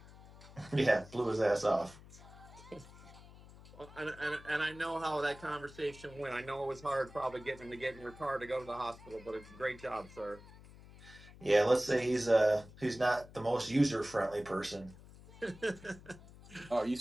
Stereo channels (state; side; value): noise; left; hum, 19 dB below the sound